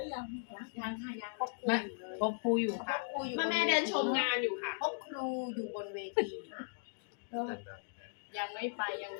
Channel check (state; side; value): silent; right; digital silence